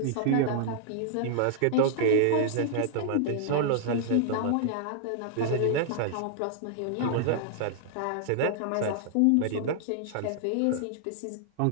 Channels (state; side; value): different; both; correlation -0.01